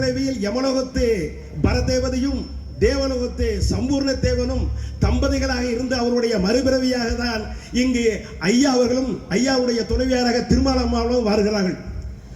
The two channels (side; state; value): both; identical; correlation 1.00